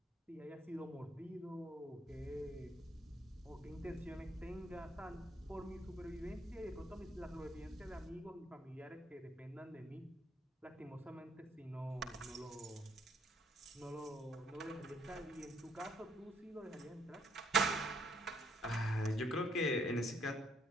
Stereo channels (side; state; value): both; normal; correlation 0.69